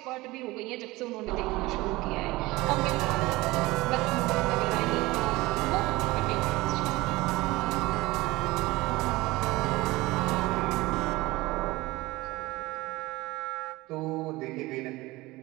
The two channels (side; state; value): left; quieter; 20.3 dB